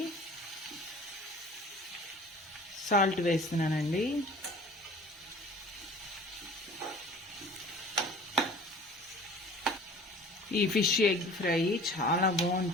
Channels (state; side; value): normal; both; correlation 0.44